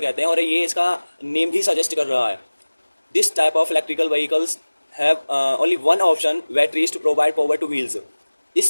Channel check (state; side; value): inverted; both; correlation -1.00